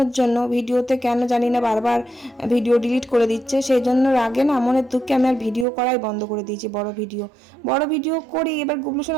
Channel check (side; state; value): left; drops out; at 5.7 s